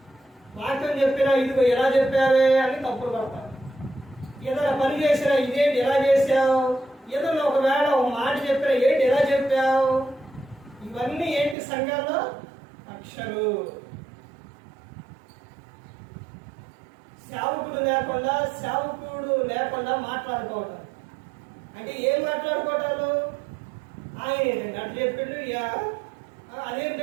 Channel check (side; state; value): left; drops out; at 11.6 s